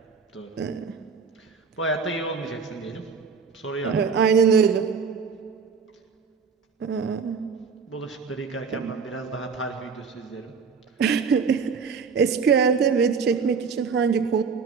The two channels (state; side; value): quieter; left; 5.6 dB